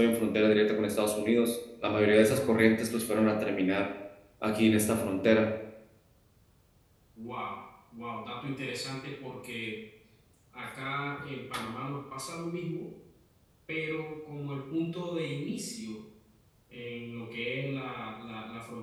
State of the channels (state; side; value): identical; both; correlation 1.00